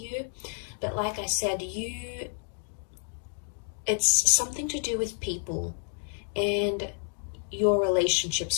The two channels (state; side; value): silent; right; 55 dB below the other